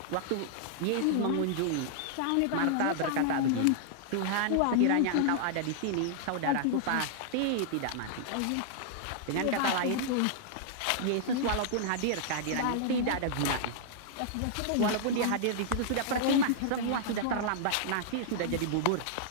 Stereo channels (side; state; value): both; different; correlation -0.01